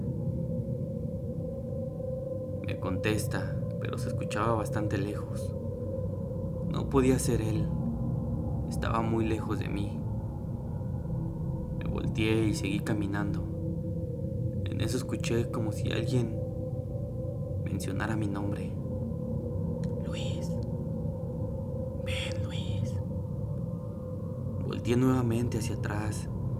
Me contesta, pero se escuchaba bastante lejos. No podía ser él, estaba muy lejos de mí. Me volteé y seguí caminando. En eso escuché como si alguien mencionara mi nombre. Luis, ven Luis. Volteé nuevamente hacia atrás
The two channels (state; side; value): identical; both; correlation 1.00